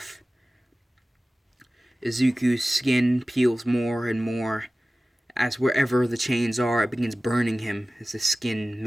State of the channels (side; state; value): both; normal; correlation 0.96